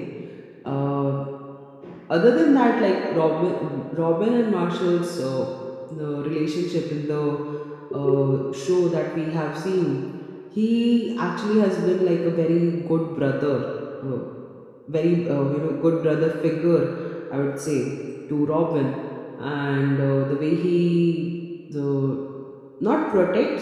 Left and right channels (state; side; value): identical; both; correlation 1.00